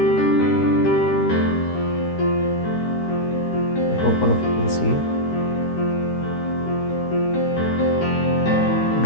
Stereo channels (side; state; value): right; late; 13 ms